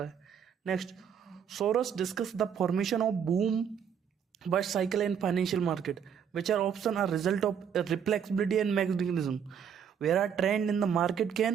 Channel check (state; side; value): quieter; left; 7.9 dB